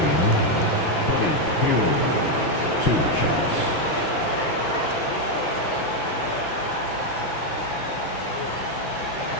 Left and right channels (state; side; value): late; right; 6.0 ms